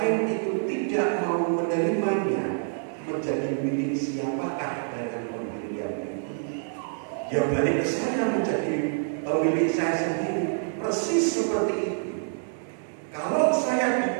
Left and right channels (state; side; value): silent; left; digital silence